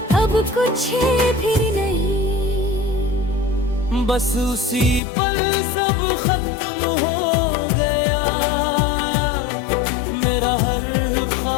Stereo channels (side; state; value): right; drops out; at 5.0 s